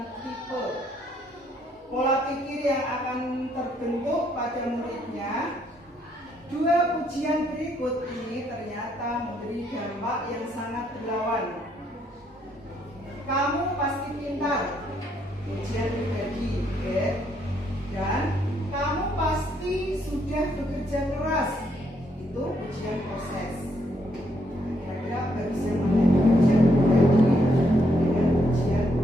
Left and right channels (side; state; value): both; normal; correlation 0.73